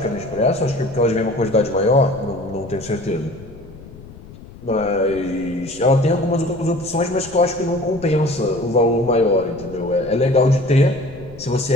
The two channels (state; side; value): noise; left; rumble, 18 dB below the sound